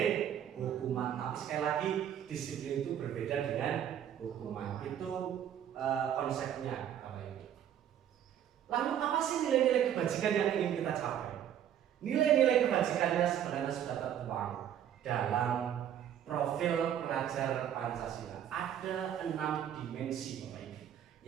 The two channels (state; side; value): quieter; left; 10.1 dB